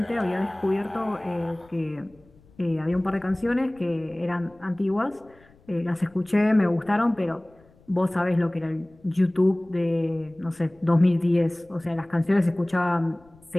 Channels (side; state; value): left; noise; rumble, 28 dB below the sound